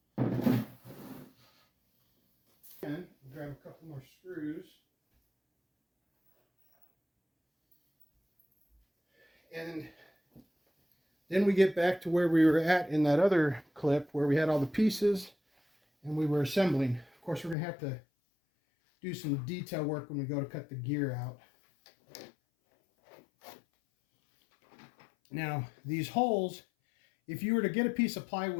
And grab a couple more screws. And then we get back to where we were at in that other clip where we had all the pieces and we were assembling. Of course, we're going to have to do some detail work when we go to cut the gear out. Now, these holes, if you were to get a piece of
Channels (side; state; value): right; drops out; at 17.6 s